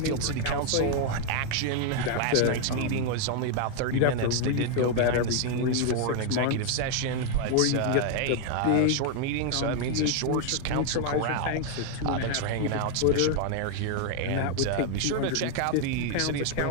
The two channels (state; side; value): different; both; correlation 0.00